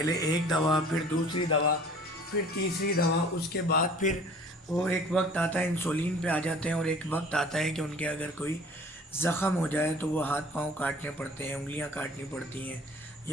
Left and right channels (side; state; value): both; normal; correlation 0.48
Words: ایک دوا, پھر دوسری دوا, پھر تیسری دوا, اس کے بعد پھر وہ ایک وقت آتا ہے انسولین پہ آ جاتے ہیں اور ایک وقت آتا ہے کہ ان کے اگر کوئی زخم ہو جائے تو وہ ہاتھ پاؤں کاٹنے پڑتے ہیں, انگلیاں کاٹنی پڑتی ہیں,